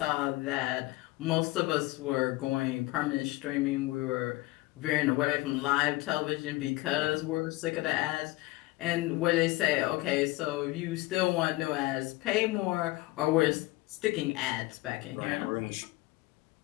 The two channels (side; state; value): right; quieter; 20.4 dB